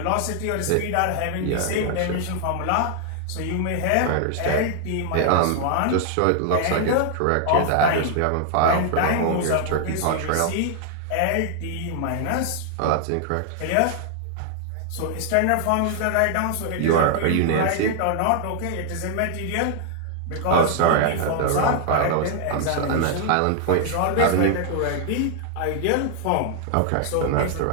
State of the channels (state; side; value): different; both; correlation 0.00